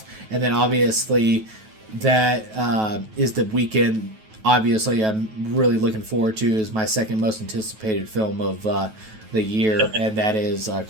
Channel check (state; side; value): late; left; 9.3 ms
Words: and then obviously that is the weekend. Obviously, I'm really looking forward to, is my second most anticipated film of the year, and that is